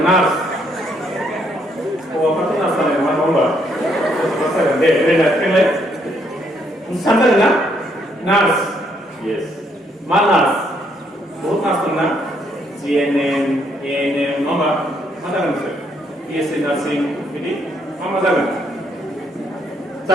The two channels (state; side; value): normal; both; correlation 0.71